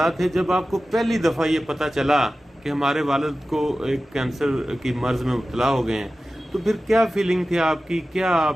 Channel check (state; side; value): normal; both; correlation 0.95